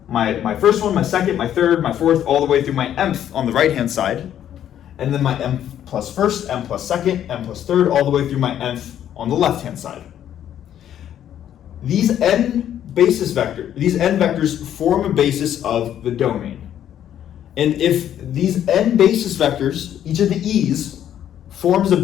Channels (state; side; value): quieter; right; 10.6 dB